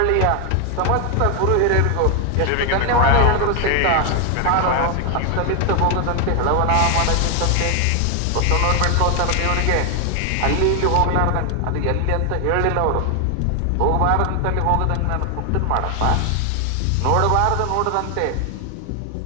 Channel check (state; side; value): different; both; correlation 0.00